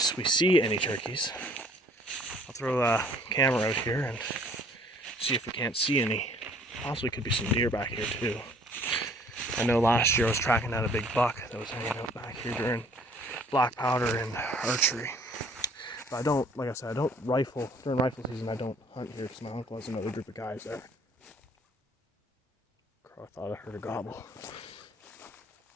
we see any turkeys, I'll throw a camera out here and see if we can't see any. Possibly could be some deer back here too. I know last year I was tracking down a big buck that was hanging out back here during black powder and archery. But I don't, like I said, I don't rifle, during rifle season I don't hunt here because my uncle has another group of guys there. Crow, I thought I heard a gobble.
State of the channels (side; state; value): both; normal; correlation 0.56